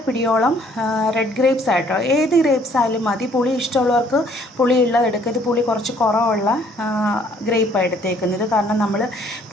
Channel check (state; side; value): normal; both; correlation 0.61